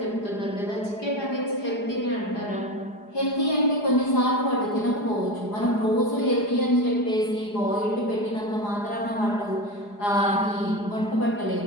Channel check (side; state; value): right; late; 4.8 ms